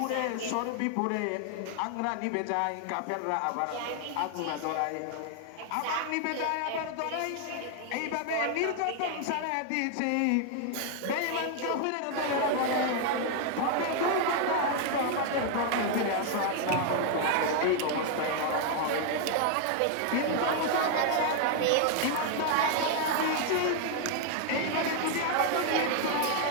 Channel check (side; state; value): both; different; correlation 0.00